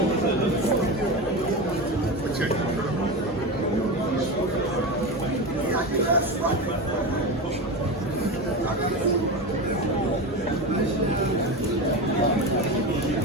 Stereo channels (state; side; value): normal; both; correlation 0.21